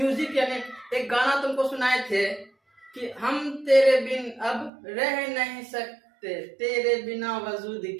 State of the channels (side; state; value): left; drops out; at 4.7 s